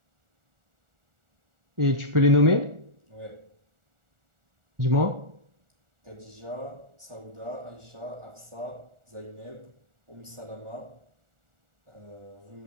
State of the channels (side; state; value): left; late; 1.4 ms